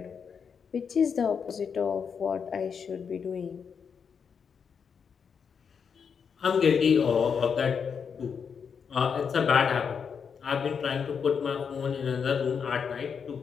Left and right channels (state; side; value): quieter; right; 6.5 dB